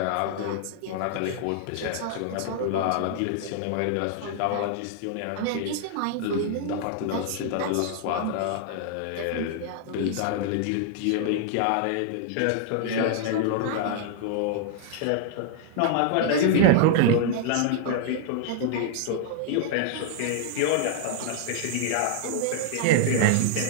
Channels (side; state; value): both; different; correlation 0.00